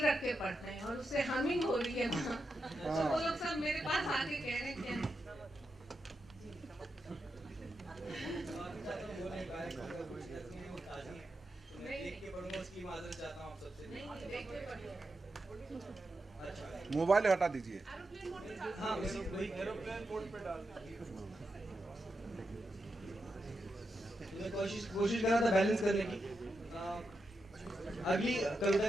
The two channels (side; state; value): both; normal; correlation 0.87